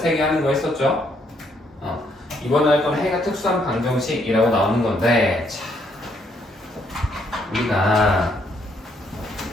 하는 거 했었죠? 이번에 할 건 해가 특수한 방정식이라고 나오는 건데, 자, 우리가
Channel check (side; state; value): both; normal; correlation 0.71